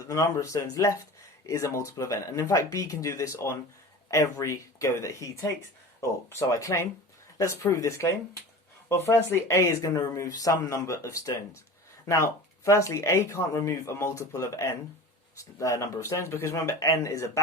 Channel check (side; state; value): both; normal; correlation 0.36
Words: the number of stones left is a multiple of n. And in fact, B can do this on every go that he takes, or so I claim. let's prove this claim. Well, firstly, A is going to remove some number of stones. Now, firstly, A can't remove a multiple of n number of stones, because remember, n is a